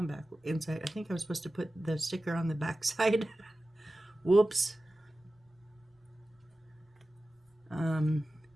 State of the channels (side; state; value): both; normal; correlation 0.95